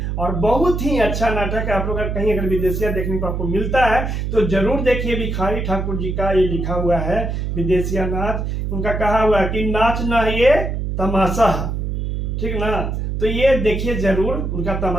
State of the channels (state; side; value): noise; right; hum, 2 dB below the sound